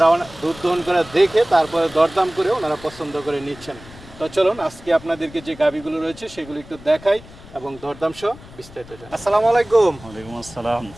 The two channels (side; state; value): left; noise; rumble, 19 dB below the sound